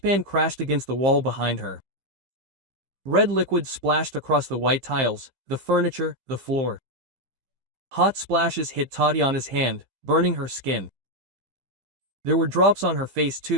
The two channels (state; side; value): late; left; 15 ms